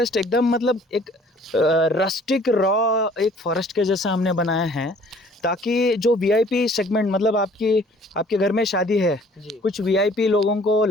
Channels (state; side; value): normal; both; correlation 0.55